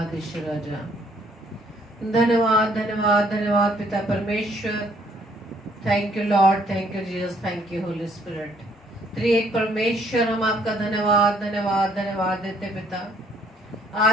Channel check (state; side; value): normal; both; correlation 0.65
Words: ईश्वर राजा, धन्यवाद धन्यवाद धन्यवाद पिता परमेश्वर। Thank you Lord, thank you Jesus, thank you Holy Spirit. त्रिएक परमेश्वर हम आपका धन्यवाद धन्यवाद धन्यवाद देते पिता